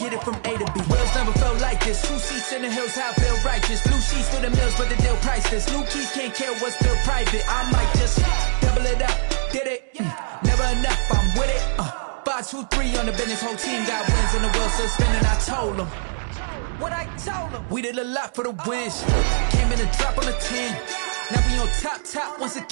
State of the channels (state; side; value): silent; left; digital silence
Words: it from A to B. Wheels never felt like this. 2 seats in the hills, how I feel righteous. Blue sheets for the mills, but the deal priceless. New keys can't care what's still private. I might just double it up. Did it? Never enough, I'm with it. 5, 2, 3 on the business. Whole team got wins and the wheels still spinning. I told them what I told them. We did a lot for the wins. Came in and drop on the 10. Now we on top once